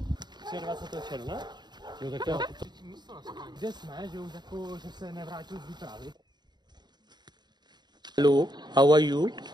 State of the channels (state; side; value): late; left; 0.21 ms